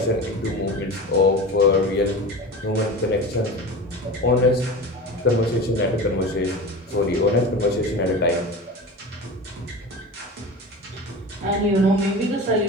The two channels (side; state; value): both; normal; correlation 0.31